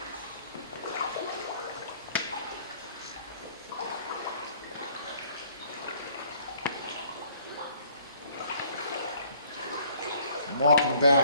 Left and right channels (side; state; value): both; inverted; correlation -0.59